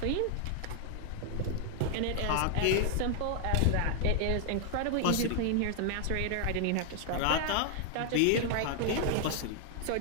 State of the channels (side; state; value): both; different; correlation 0.00